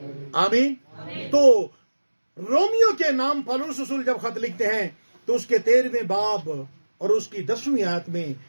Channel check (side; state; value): both; inverted; correlation -1.00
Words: आमीन। तो रोमियो के नाम पौलुस रसूल जब खत लिखते हैं तो उसके 13वें बाब और उसकी 10वीं आयत में